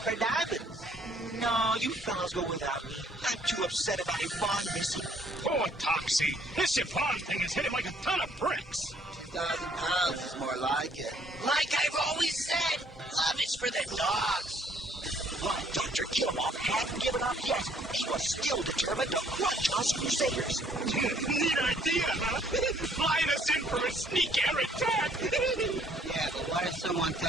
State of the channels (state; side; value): normal; both; correlation 0.63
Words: for diamonds. No, you fellas go without me. I'm too upset about Yvonne missing. Poor Toxie. This Yvonne thing has hit him like a ton of bricks. 2,000 pounds is more like it. Like I've always said, love is for the dogs. But Dr. Killamoff hadn't given up yet. He was still determined to crunch us Crusaders. Neat idea, huh? Flying us in for a sneak air attack. Yeah, but what if someone